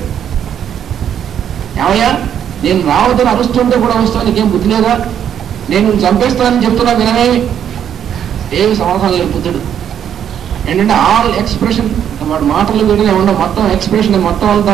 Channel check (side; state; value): left; quieter; 9.4 dB